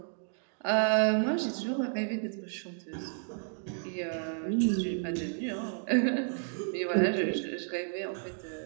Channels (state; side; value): silent; left; 57 dB below the other